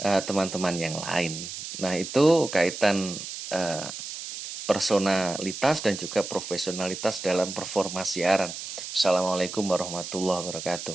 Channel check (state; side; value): noise; right; hiss, 8 dB below the sound